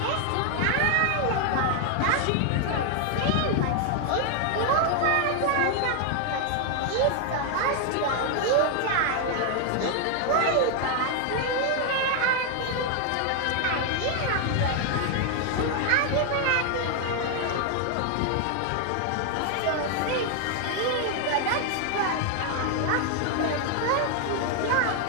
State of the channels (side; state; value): both; different; correlation 0.00